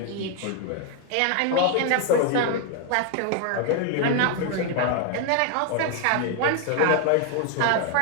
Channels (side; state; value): both; different; correlation 0.00